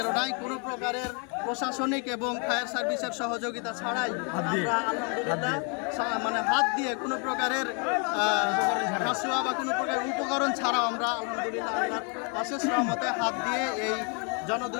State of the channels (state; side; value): quieter; right; 36.8 dB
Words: কোনো প্রকারের প্রশাসনিক এবং ফায়ার সার্ভিসের সহযোগিতা ছাড়াই আমরা আলহামদুলিল্লাহ মানে হাত দিয়ে কোনো প্রকারের হাসুয়া বা কোনো প্রকারের উপকরণ ছাড়াও আমরা আলহামদুলিল্লাহ আল্লাহর অশেষ রহমতে হাত দিয়ে এই